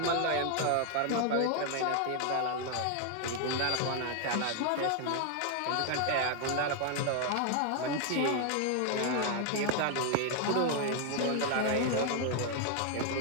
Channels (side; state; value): both; different; correlation 0.01